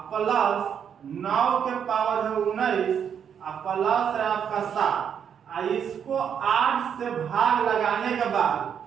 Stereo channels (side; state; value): left; quieter; 8.0 dB